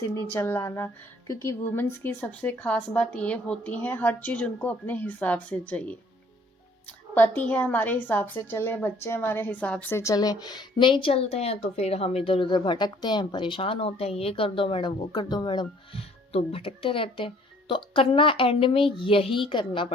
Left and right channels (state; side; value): normal; both; correlation 0.58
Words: नहीं चलाना। क्योंकि वुमेन्स की सबसे खास बात ये होती है, हर चीज़ उनको अपने हिसाब से चाहिए। पति है हमारे हिसाब से चले, बच्चे हमारे हिसाब से चले, नहीं चलते हैं तो फिर हम इधर उधर भटकते हैं, परेशान होते हैं, ये कर दो मैडम, वो कर दो मैडम, तो भटकते रहते हैं। तो करना एंड में यही करना